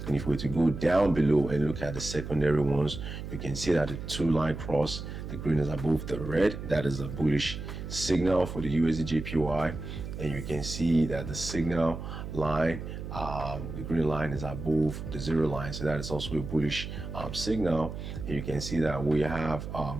And if we were to go down below and look at the secondary ones, you can see that the two line cross, the green is above the red. That is a bullish signal for the USD JPY. And you can see that the signal line, the green line, is above the zero line, so that is also a bullish signal. And you can see that we have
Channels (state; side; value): noise; right; hum, 8 dB below the sound